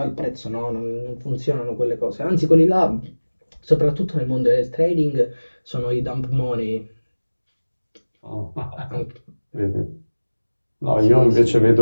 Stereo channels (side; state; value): both; inverted; correlation -1.00